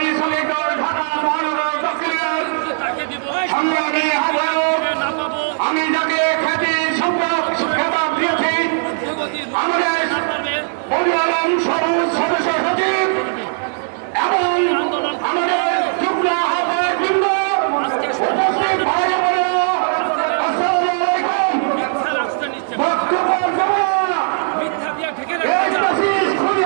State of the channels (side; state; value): left; silent; digital silence